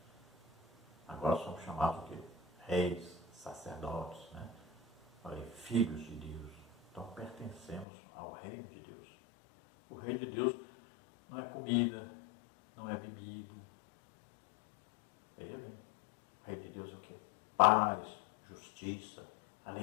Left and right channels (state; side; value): drops out; right; at 7.9 s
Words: Agora somos chamados de reis, sacerdotes, né? Filhos de Deus. Então pertencemos ao reino de Deus. O reino de Deus não é comida, não é bebido. É paz, justiça,